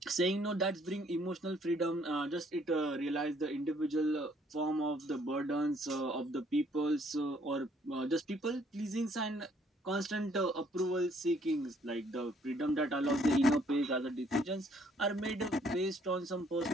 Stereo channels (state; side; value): normal; both; correlation 0.64